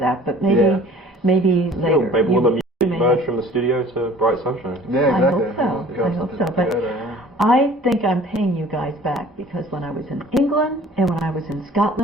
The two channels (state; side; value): normal; both; correlation 0.49